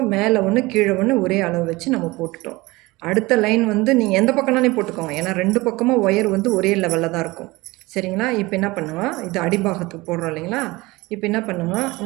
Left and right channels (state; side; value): quieter; left; 21.6 dB